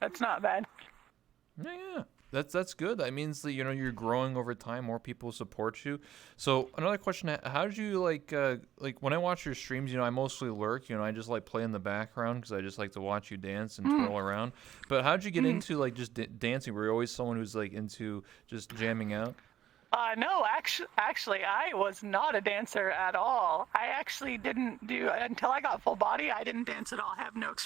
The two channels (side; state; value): left; quieter; 11.5 dB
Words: not bad. Yeah. That's good. That means that you're growing over time. More people support you. So another question: how did you like when I watch your streams? I mostly lurk. I just like play in the background because I just like to watch you dance and twirl around. But how did you get into like just dancing? Were you always someone who's like into just jamming out? No, actually, I was not a dancer at all. I actually didn't do until I got full body. I didn't dance at all. I have no